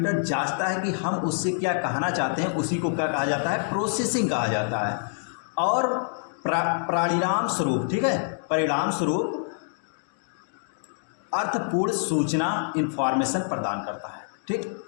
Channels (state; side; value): silent; right; digital silence